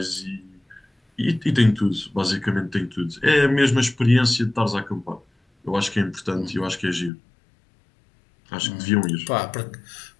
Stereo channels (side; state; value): right; drops out; at 7.1 s